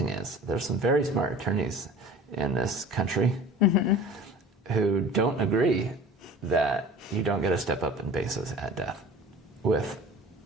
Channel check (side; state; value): both; normal; correlation 0.41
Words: is, there's some very smart attorneys in this country who don't agree that you don't get a step up in basis at death with